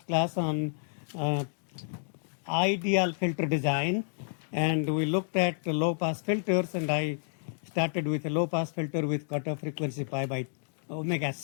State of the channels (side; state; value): right; silent; digital silence